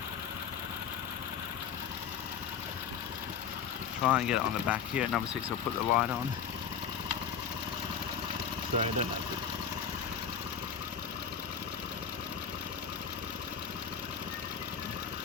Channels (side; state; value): right; quieter; 7.4 dB